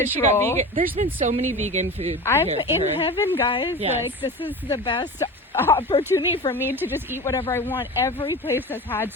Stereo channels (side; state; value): both; normal; correlation 0.31